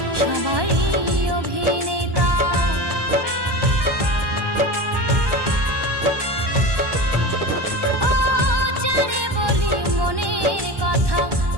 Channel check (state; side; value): late; left; 1.1 ms